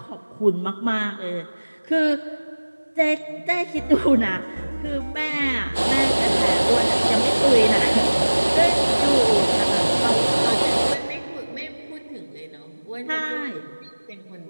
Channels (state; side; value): inverted; both; correlation -1.00